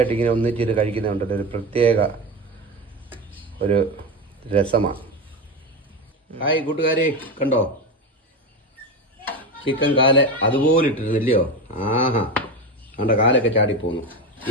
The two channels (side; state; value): both; normal; correlation 0.20